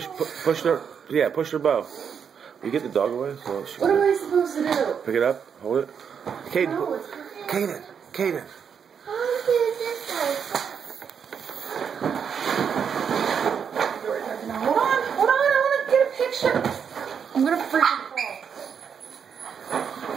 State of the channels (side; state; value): left; quieter; 7.2 dB